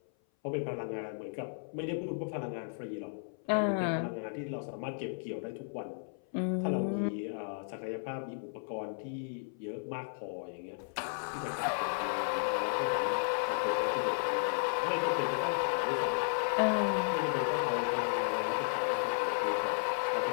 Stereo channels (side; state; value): right; silent; 55 dB below the other